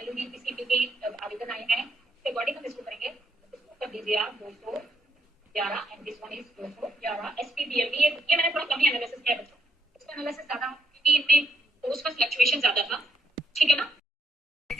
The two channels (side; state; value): both; normal; correlation 0.75